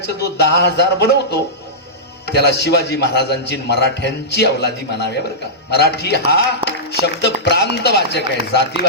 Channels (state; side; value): normal; both; correlation -0.15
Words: जो 10,000 बनवतो त्याला शिवाजी महाराजांची मराठ्यांची अवलादी म्हणाव्या बरं का. मराठी हा शब्द प्रांतवाचक आहे,